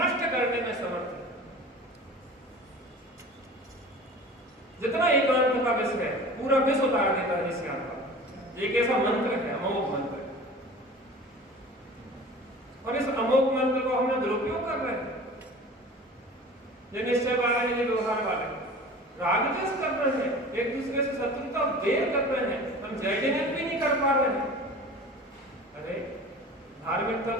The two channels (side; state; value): both; normal; correlation 0.40